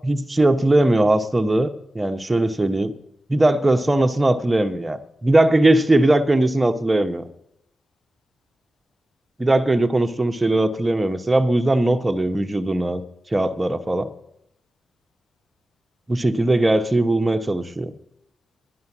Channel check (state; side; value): normal; both; correlation 0.96